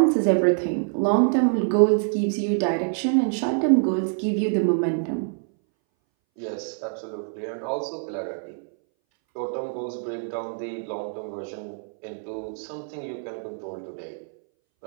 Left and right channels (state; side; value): silent; left; 61 dB below the other